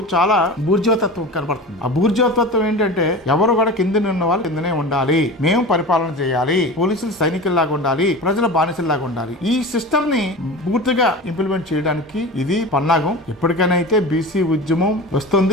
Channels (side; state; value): both; normal; correlation 0.32